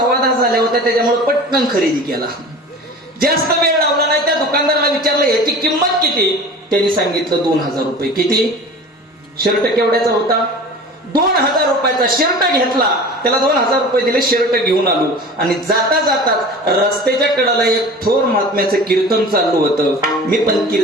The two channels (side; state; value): both; normal; correlation 0.39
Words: झाल्या होत्या त्याच्यामुळे पटकन खरेदी केला. जास्त वेळ लावला नाही. त्या दुकानदाराला विचारलं याची किंमत किती? त्यांनी सांगितलं 2000 रुपये. किती? शर्ट केवढ्याचा होता? 2000 रुपयाचा शर्ट घेतला. त्याला 2000 रुपये दिले. शर्ट घेऊन आलो आणि जाता जाताच रस्त्याच्या कडाला एक थोर महात्म्याचं कीर्तन चालू होतं. मी पण